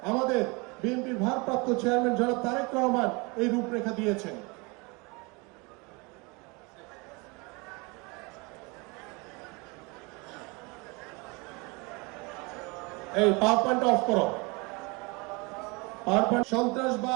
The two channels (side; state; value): left; quieter; 28.0 dB